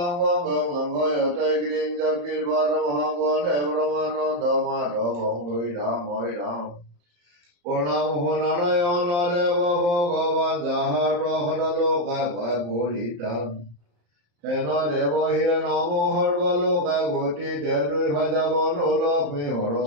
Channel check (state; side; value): late; left; 34 ms